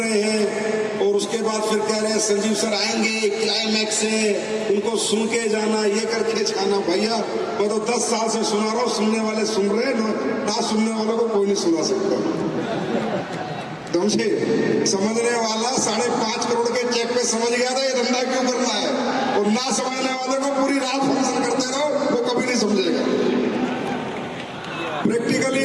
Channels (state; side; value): identical; both; correlation 1.00